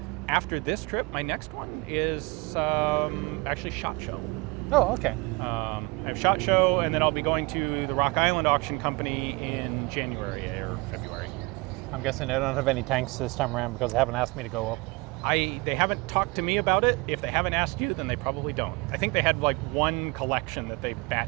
After this trip, my next one is actually SHOT Show. Oh, okay. I have SHOT Show, and then I'll be going to the Rock Island Auction Company in January or February. I'm guessing they don't have any tanks this time around because they haven't asked me to go up. They haven't talked to me about it. If they haven't asked you, then they probably don't. I think they had like one collection that they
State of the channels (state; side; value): quieter; left; 26.1 dB